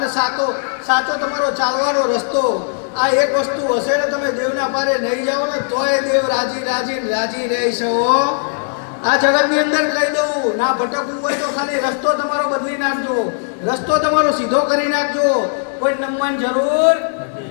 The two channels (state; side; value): silent; right; 65 dB below the other